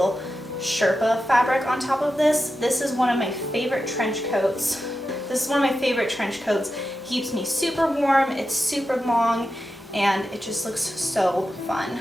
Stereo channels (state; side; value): normal; both; correlation 0.90